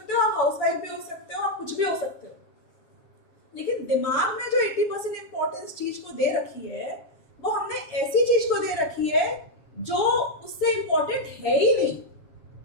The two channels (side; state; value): right; late; 7.3 ms